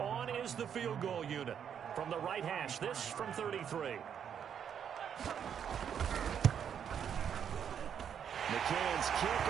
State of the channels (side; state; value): left; quieter; 8.3 dB